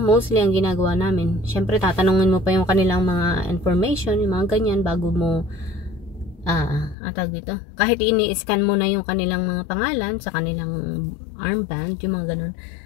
mostly ang ginagawa namin. Syempre, tatanungin mo pa yung kanilang mga information, yung mga ganyan, bago mo dito. Kahit ini-scan mo na yung kanilang mga pangalan sa kanilang armband, yung mga ganun.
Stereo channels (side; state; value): right; drops out; at 7.0 s